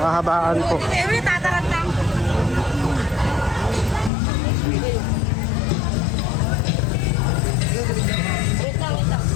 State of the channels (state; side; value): drops out; right; at 4.1 s